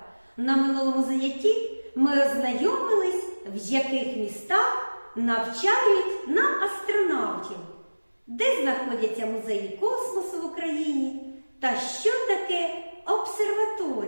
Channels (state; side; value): inverted; both; correlation -1.00